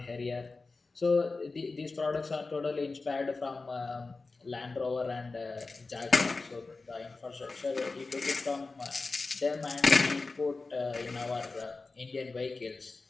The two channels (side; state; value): right; quieter; 3.8 dB